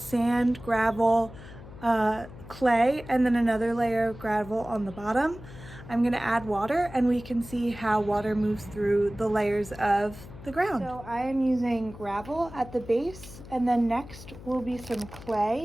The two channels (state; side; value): noise; left; hum, 16 dB below the sound